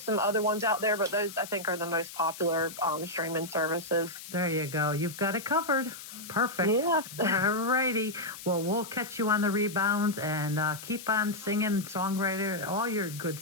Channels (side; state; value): left; noise; hiss, 13 dB below the sound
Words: some other ones out there, but those I think are the most popular streaming services. There you go. You've got it covered. Perfect. Yeah. All righty. Well, we'll catch you on the rebounds and keep on singing, songwriter, all your good